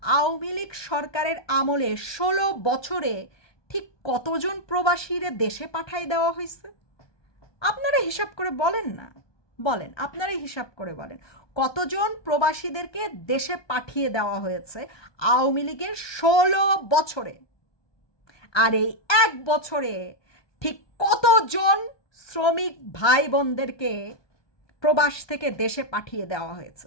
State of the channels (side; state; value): right; late; 1.2 ms